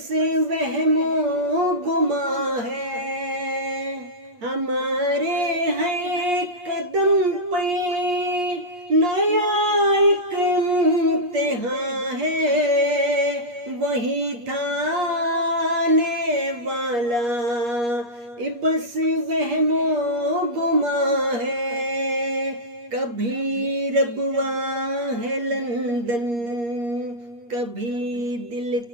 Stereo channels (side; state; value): left; late; 8.4 ms